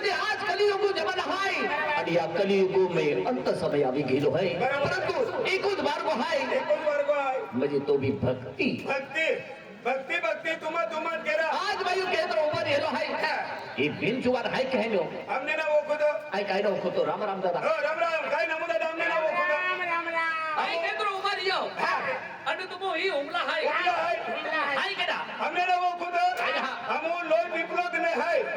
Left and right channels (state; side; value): identical; both; correlation 1.00